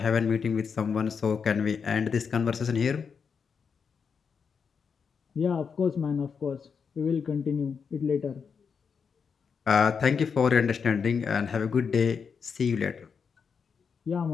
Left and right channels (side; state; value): right; quieter; 6.1 dB